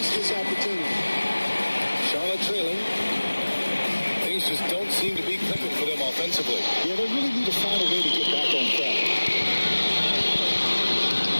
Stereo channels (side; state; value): both; inverted; correlation -1.00